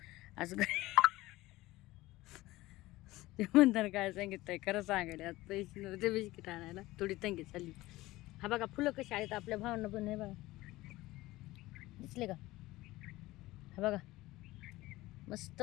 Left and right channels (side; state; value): right; quieter; 18.4 dB